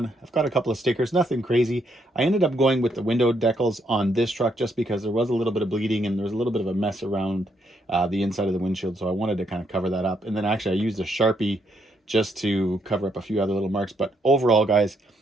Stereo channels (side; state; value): both; normal; correlation 0.75